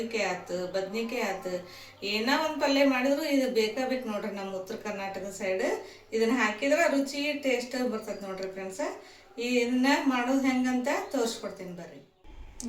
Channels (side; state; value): both; identical; correlation 1.00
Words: ಆಯ್ತು, ಬದ್ನಿಕಾಯಿ ಆಯ್ತು, ಏನೋ ಒಂದು ಪಲ್ಯ ಮಾಡಿದ್ರು ಇದು ಬೇಕು ನೋಡ್ರಿ. ನಮ್ಮ ಉತ್ತರ ಕರ್ನಾಟಕದ ಸೈಡ್ ಇದನ್ನು ಹಾಕಿದ್ರೆ ರುಚಿ ಟೇಸ್ಟ್ ಬರ್ತದೆ ನೋಡ್ರಿ ಫ್ರೆಂಡ್ಸ. ಇದನ್ನ ಮಾಡೋದು ಹೆಂಗಂತ ತೋರಿಸ್ಕೊಡ್ತೀನಿ ಬರ್ರಿ